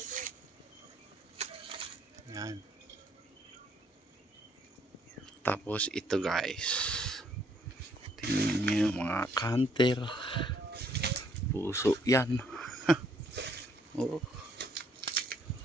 Yan. Tapos ito guys, tingnan nyo mga counter, puso yan. Oh,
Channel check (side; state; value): both; normal; correlation 0.67